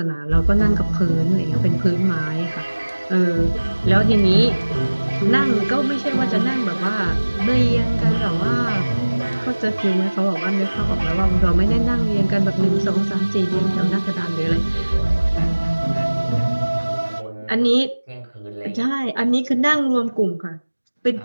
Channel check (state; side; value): inverted; both; correlation -1.00